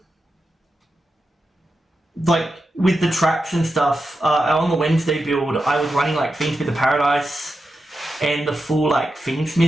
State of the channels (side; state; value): both; normal; correlation 0.89